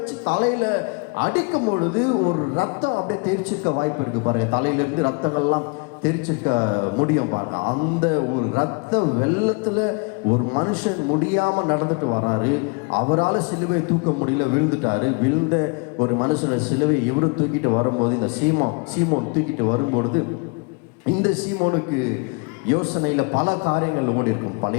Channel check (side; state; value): right; quieter; 33.1 dB